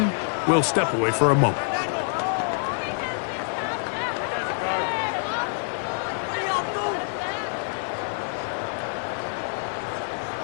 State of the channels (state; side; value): silent; right; digital silence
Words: we'll step away for a moment.